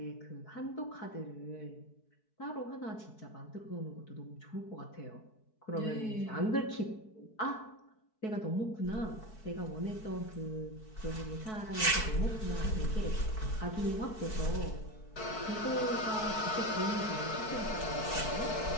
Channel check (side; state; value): right; late; 4.6 ms